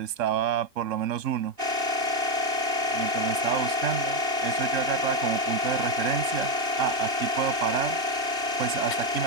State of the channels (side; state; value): left; late; 2.6 ms